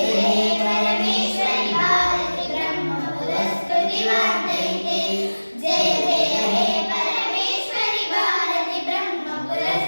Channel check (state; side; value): inverted; both; correlation -1.00